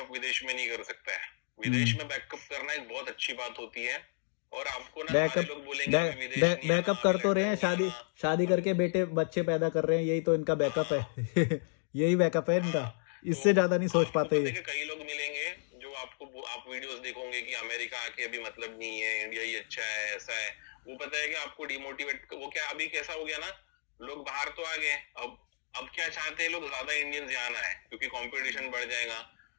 विदेश में नहीं कर सकता है। विदेश में बैकअप करना एक बहुत अच्छी बात होती है। और आपको ना सारे बैकअप लोग बोलेंगे अभी विदेश नहीं आना, बैकअप अभी कर तो रहे हैं, लंदन नहीं शादी आना। शादी करके बेटे बच्चे पैदा कर रहे हैं, यही तो इनका बैकअप हाँ है। यही बैकअप है इनका, हाँ। तो इससे ज्यादा नहीं सोच आपको पाते पता है ये। कि कई लोग मिलेंगे जो आपको, आप वीडियोस देखोगे कि अमेरिका आके अभी मतलब नहीं है, इंडिया ही अच्छा है, ऐसा है। वो पता है कि आपको डिमोटिवेट, वो क्या अभी कैसा हो गया ना, लोग बाहर तो आ गए, अब क्या चाहते हैं लोग, ज्यादा इंडियंस यहाँ आना है क्योंकि कंपटीशन बढ़ जाएगा।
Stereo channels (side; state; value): right; silent; digital silence